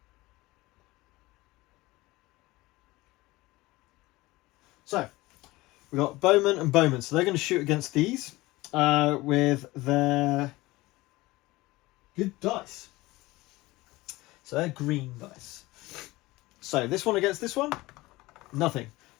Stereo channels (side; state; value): right; quieter; 20.0 dB